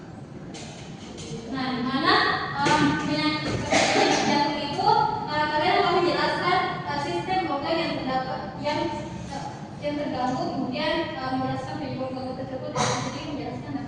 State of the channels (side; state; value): both; identical; correlation 1.00